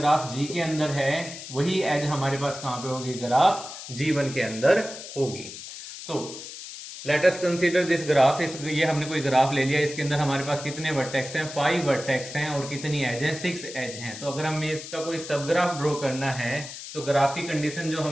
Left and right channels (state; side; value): noise; left; hiss, 11 dB below the sound